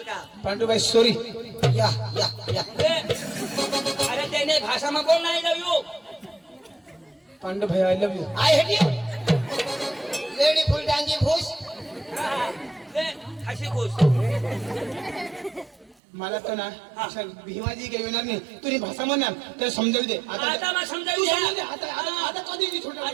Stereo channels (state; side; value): drops out; left; at 16.0 s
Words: का पांडू भाई सॉरी या अरे त्याने भाषा में बोल नाही लव यू पांडू भाई I love you I hate you lady full डांगी भूस हसी खुश मला तो ना अशा भीमाजी काही येणार नाही तुझी भाषा म्हणणार त्याला समजावू दे आता मग समजावू तू द्या. समजावू दे. आता कधी नाही छोटा